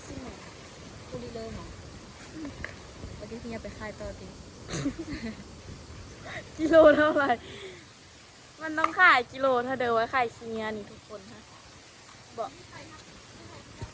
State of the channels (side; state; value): both; identical; correlation 1.00